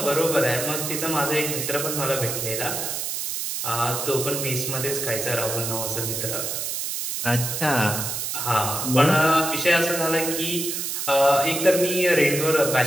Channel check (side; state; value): right; noise; hiss, 3 dB below the sound